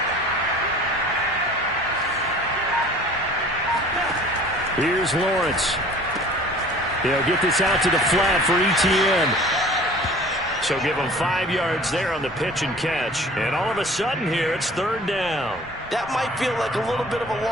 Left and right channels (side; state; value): both; normal; correlation 0.47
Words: Here's Lawrence. He'll get this out to the flat for Etienne. So give them 5 yards there on the pitch and catch. And all of a sudden here, it's 3rd down. That might feel like a little bit of a